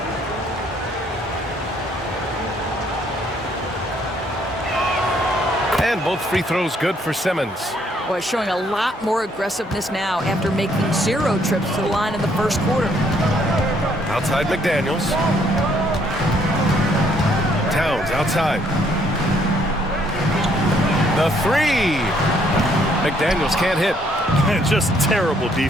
And both free throws good for Simmons. Boy, showing a lot more aggressiveness now after making 0 trips to the line in the first quarter. Outside McDaniels. Towns outside. The three. McDaniels can't hit. Just terrible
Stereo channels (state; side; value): normal; both; correlation 0.67